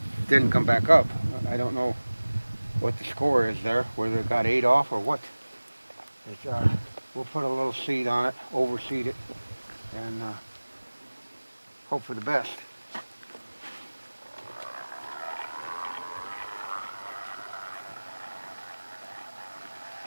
didn't come back up. I don't know what the score is there, whether it got ate off or what. We'll put a little seed on it, overseed it, and hope for the best.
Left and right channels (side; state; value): both; inverted; correlation -1.00